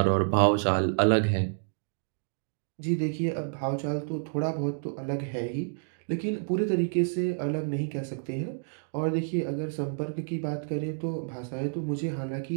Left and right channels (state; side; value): silent; left; digital silence